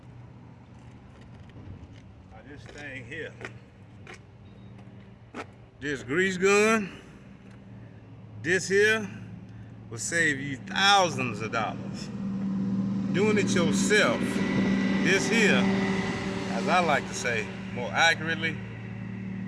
of this thing here. This grease gun, this here will save you thousands of dollars. Doing it yourself, this here, as I like to say more accurately,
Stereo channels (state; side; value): identical; both; correlation 1.00